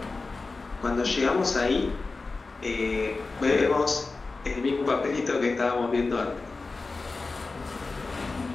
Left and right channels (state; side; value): quieter; right; 3.8 dB